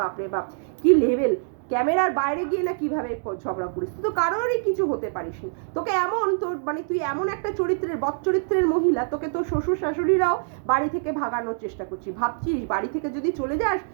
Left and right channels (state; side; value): silent; left; digital silence